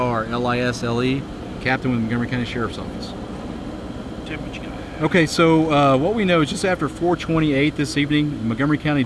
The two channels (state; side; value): identical; both; correlation 1.00